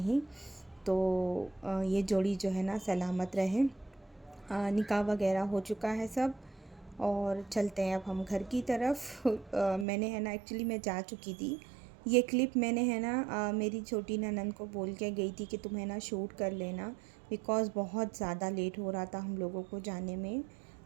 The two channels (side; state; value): left; drops out; at 9.9 s